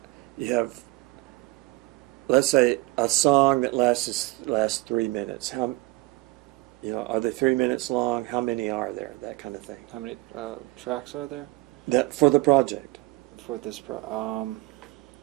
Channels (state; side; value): quieter; left; 22.4 dB